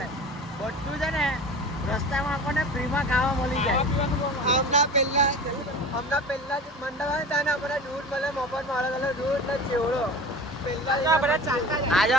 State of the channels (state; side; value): normal; both; correlation 0.35